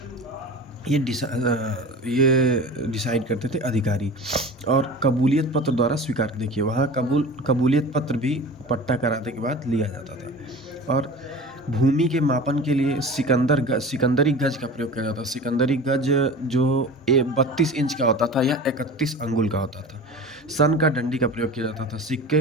ये डिसाइड करते थे अधिकारी। और कबूलियत पत्र द्वारा स्वीकार, देखिए वहाँ कबूलियत पत्र भी पट्टा कराने के बाद लिया जाता था। और भूमि के मापन के लिए सिकंदरी गज का प्रयोग किया जाता था। सिकंदरी गज जो 32 इंच का होता था या 31 अंगुल का होता था। सन का डंडी का प्रयोग किया जाता था।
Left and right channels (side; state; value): both; normal; correlation 0.36